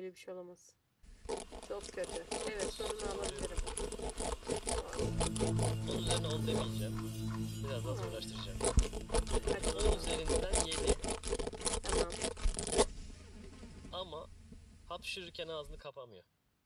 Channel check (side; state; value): both; identical; correlation 1.00